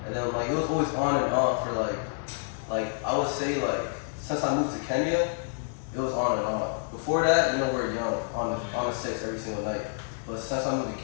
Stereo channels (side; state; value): right; silent; digital silence